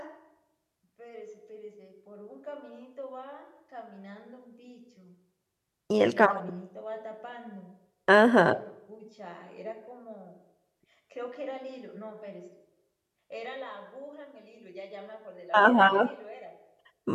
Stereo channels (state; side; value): identical; both; correlation 1.00